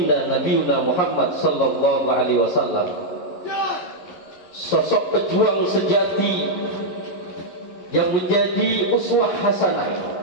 Nabiuna Muhammad sallallahu alaihi wasallam, sosok pejuang sejati yang menjadi uswah hasanah,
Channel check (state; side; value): late; right; 11 ms